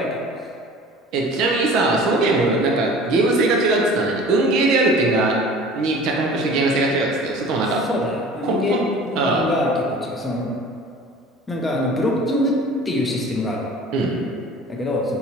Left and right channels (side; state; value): both; normal; correlation 0.44